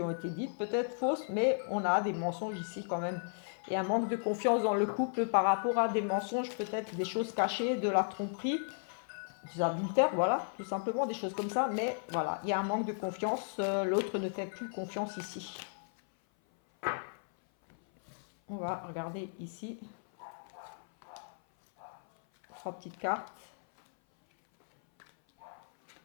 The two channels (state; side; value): silent; right; 55 dB below the other